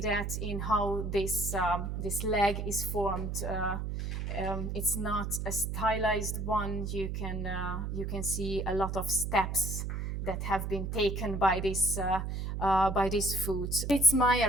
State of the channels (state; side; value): noise; right; hum, 3 dB below the sound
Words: that in how this leg is formed. It's not a stylized one. You can see a lot of steps that have been taken by this foot. Fritz